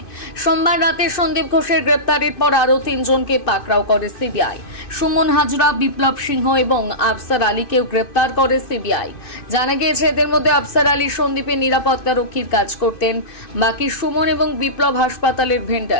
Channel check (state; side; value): late; right; 2.5 ms